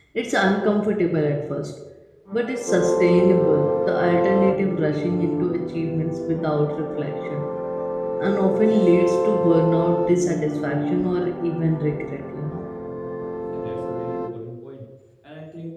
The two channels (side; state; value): both; identical; correlation 1.00